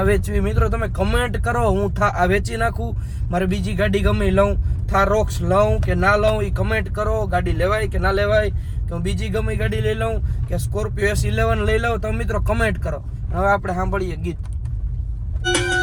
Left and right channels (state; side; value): identical; both; correlation 1.00